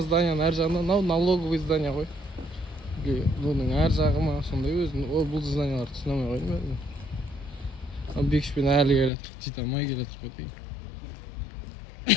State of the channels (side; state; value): right; drops out; at 9.1 s